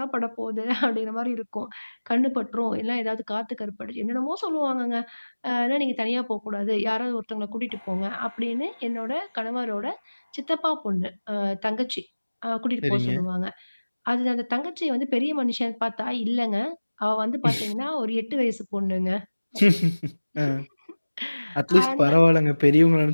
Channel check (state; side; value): inverted; both; correlation -1.00